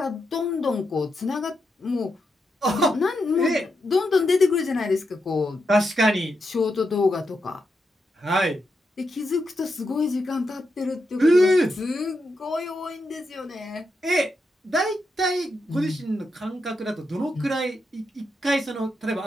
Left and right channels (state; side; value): normal; both; correlation 0.84